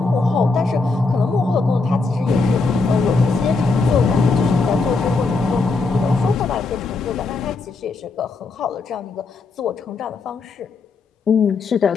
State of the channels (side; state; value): right; quieter; 3.9 dB